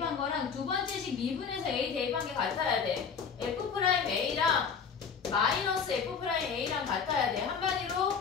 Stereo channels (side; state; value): right; quieter; 6.3 dB